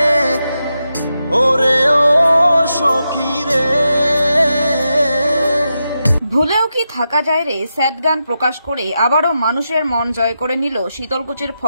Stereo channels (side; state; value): both; inverted; correlation -0.87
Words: ওরে ও সখী রে। ভুলেও কি থাকা যায় রে স্যাড গান প্রকাশ করে আবারও মানুষের মন জয় করে নিল শীতলকুচির